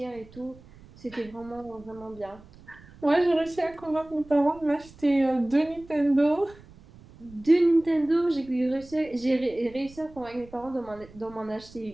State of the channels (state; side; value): noise; right; rumble, 22 dB below the sound